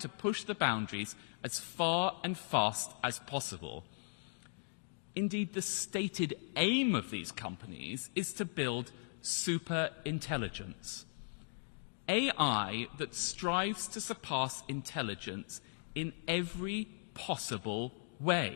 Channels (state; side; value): silent; right; digital silence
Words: push the boundaries as far and fast as possible. Indeed, the stated aim of these companies is to build super intelligence. AI that strives to surpass intelligence in every possible